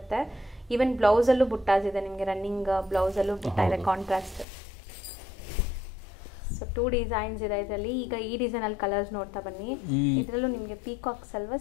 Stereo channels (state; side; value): drops out; right; at 4.5 s